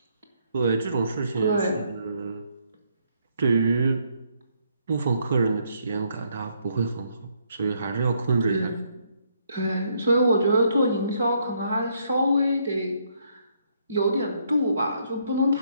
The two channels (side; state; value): both; inverted; correlation -0.72